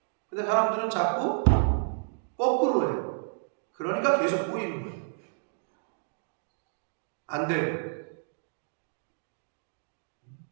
근데 사람들은 자꾸 거꾸로 해요. 그러니까 계속 꼬이는 거예요. 안 되고.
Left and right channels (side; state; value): left; silent; digital silence